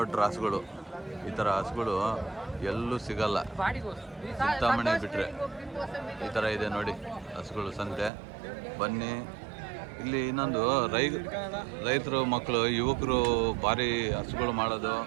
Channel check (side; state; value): left; drops out; at 8.1 s